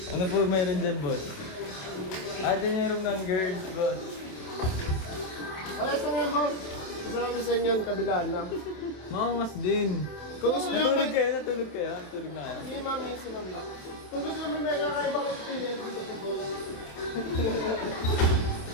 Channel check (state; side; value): late; right; 27 ms